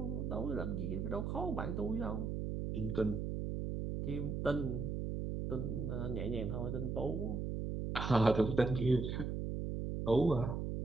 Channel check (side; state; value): right; noise; hum, 2 dB below the sound